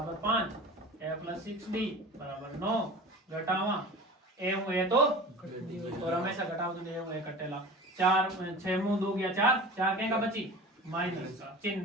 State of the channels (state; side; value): normal; both; correlation 0.37